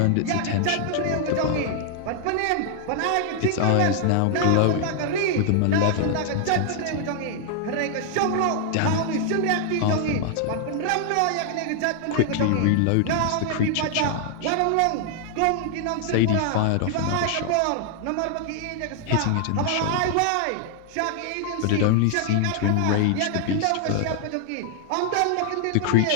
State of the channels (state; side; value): different; both; correlation 0.00